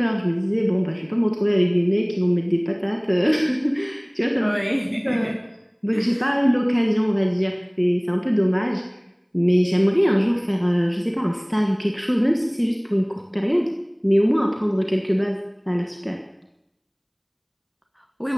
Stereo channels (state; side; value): identical; both; correlation 1.00